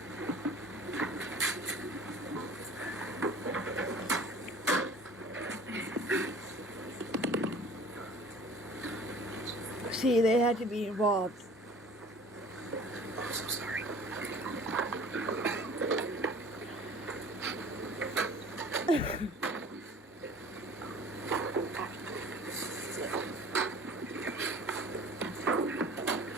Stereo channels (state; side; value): normal; both; correlation 0.46